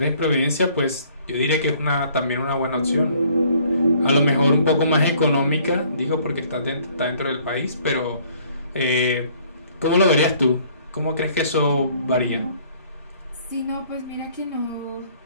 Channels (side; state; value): both; inverted; correlation -0.59